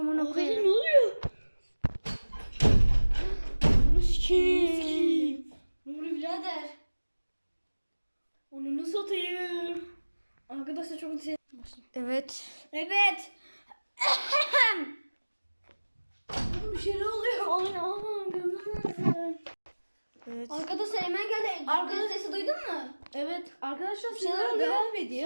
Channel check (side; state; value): both; inverted; correlation -1.00